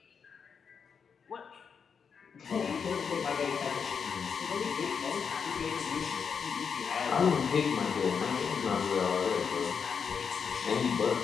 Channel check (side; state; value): right; quieter; 6.4 dB